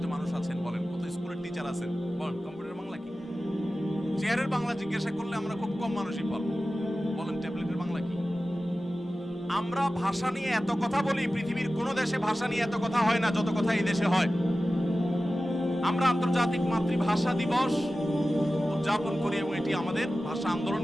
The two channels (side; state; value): both; normal; correlation 0.95